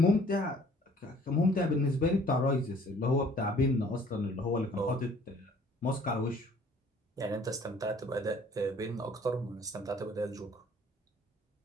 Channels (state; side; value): normal; both; correlation 0.56